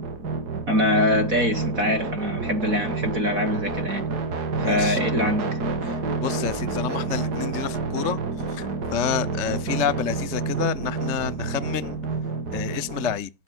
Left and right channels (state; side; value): late; left; 3.4 ms